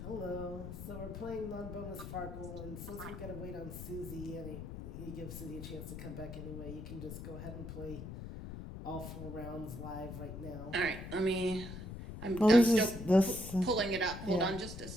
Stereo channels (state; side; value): noise; left; rumble, 9 dB below the sound